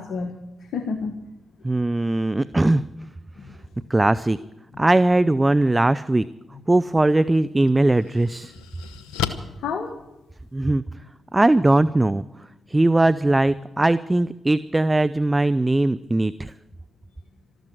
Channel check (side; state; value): both; normal; correlation 0.98